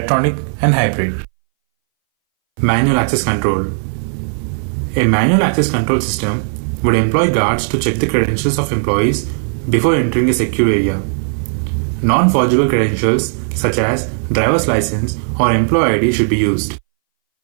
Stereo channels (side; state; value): left; silent; 63 dB below the other